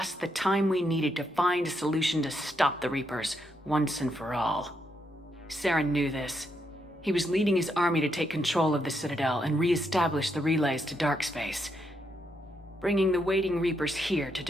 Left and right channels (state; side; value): normal; both; correlation 0.79